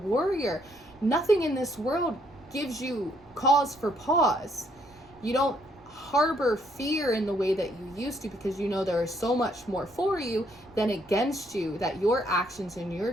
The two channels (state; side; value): noise; right; rumble, 29 dB below the sound